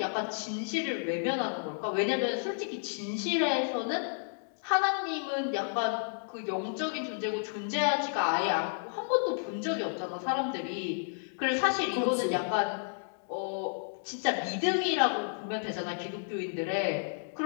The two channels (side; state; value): right; silent; digital silence